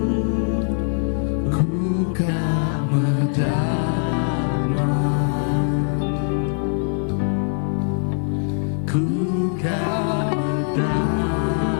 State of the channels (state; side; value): silent; right; 64 dB below the other